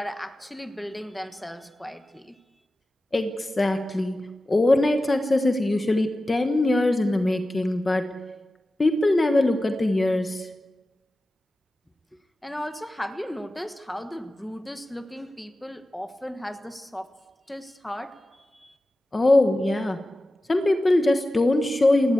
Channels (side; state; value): both; normal; correlation 0.94